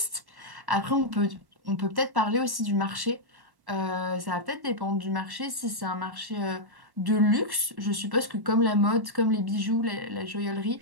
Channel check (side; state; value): left; late; 1.1 ms